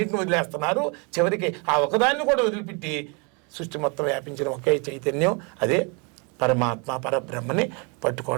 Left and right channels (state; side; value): quieter; left; 33.2 dB